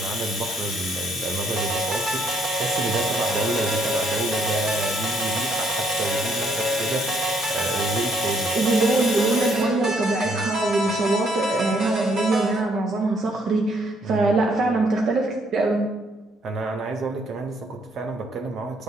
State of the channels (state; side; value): normal; both; correlation 0.69